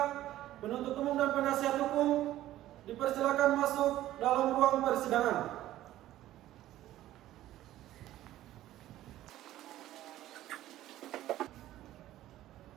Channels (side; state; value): left; quieter; 14.2 dB